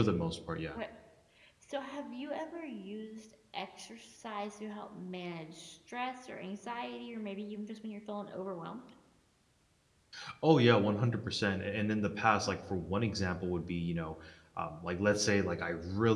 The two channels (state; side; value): identical; both; correlation 1.00